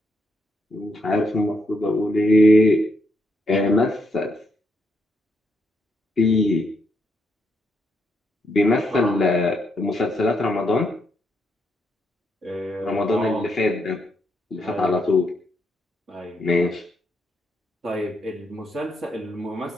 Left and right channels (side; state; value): both; normal; correlation 0.78